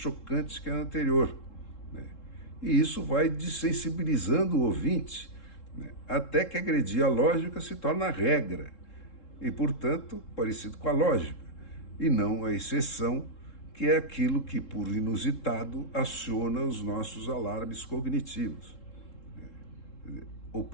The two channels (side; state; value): right; late; 3.7 ms